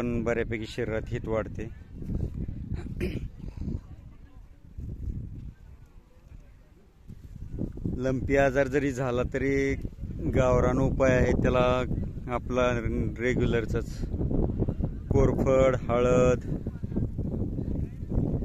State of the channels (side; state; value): both; identical; correlation 1.00